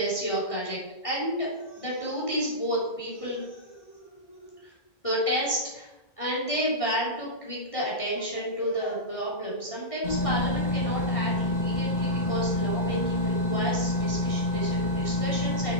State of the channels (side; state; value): right; late; 1.9 ms